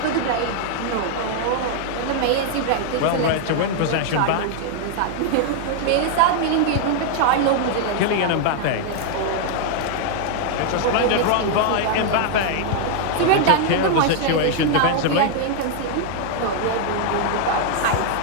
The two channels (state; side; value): different; both; correlation 0.00